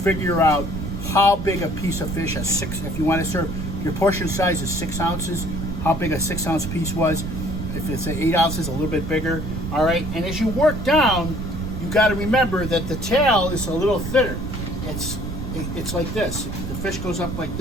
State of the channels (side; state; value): right; noise; rumble, 6 dB below the sound